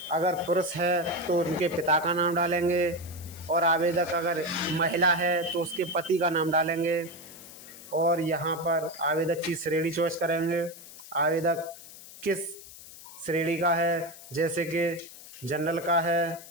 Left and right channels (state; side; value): noise; left; hiss, 17 dB below the sound